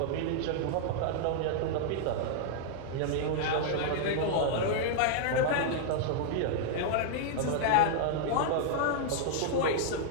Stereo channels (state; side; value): different; both; correlation -0.01